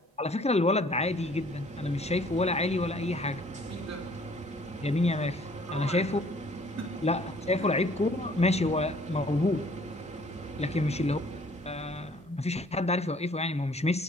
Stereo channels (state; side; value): normal; both; correlation 0.57